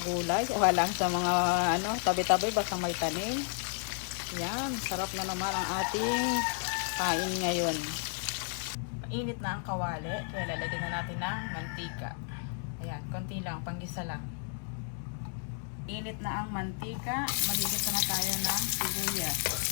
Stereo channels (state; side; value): silent; right; 56 dB below the other